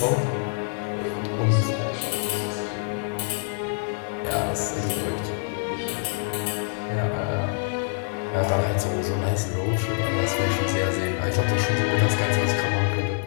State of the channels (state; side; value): silent; right; 61 dB below the other